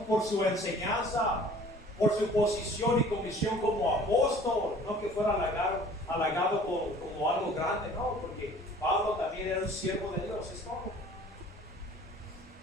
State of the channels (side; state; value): both; normal; correlation 0.50